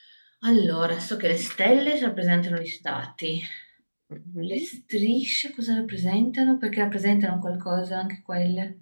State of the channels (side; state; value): both; inverted; correlation -1.00